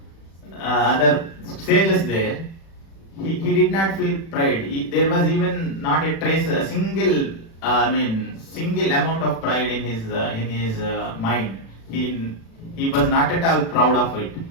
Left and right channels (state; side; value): late; right; 36 ms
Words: sages there, he did not feel pride. There was even not a trace, a single amount of pride in his mind. He was not at all proud of it.